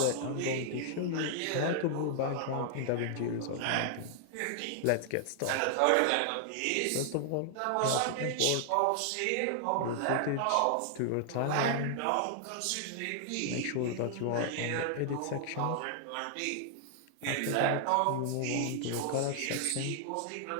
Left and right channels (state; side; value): different; both; correlation 0.00